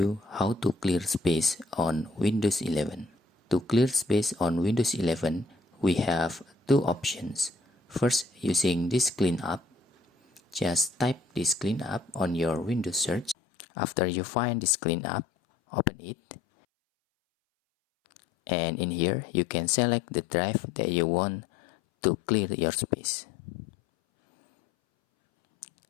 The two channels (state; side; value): drops out; right; at 13.4 s